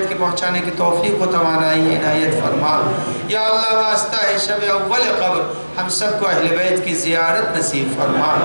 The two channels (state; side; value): inverted; both; correlation -1.00